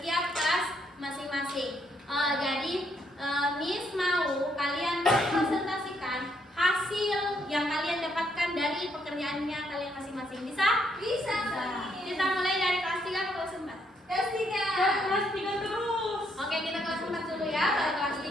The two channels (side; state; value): both; normal; correlation 0.73